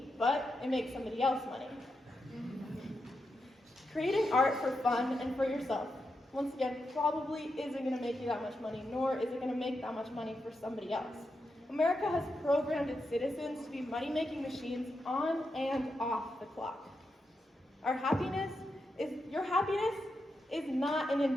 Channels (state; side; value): normal; both; correlation 0.86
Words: but it makes somebody else money. Creating art for fun and for yourself, once again, probably isn't going to make you that much money, nor is it going to make that much money for somebody else. America has programmed its citizens to be money-making machines on and off the clock. Your happiness is not an